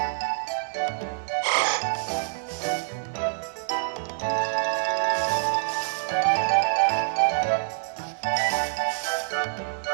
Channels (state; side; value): silent; left; digital silence